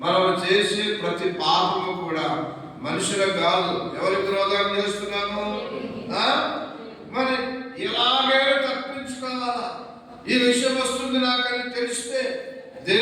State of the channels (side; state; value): both; identical; correlation 1.00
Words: మనం చేసే ప్రతి పాపము కూడా మనుషులకు కాదు, ఎవరికి విరోధంగా చేస్తున్నాము? మరి ఎలాగైనా తప్పించుకోవాలా. ఈ విషయం వస్తుంది నాకని తెలిస్తే